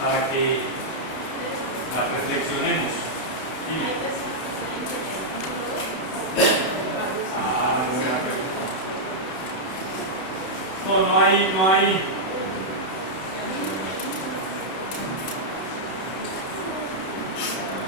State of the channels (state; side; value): late; right; 32 ms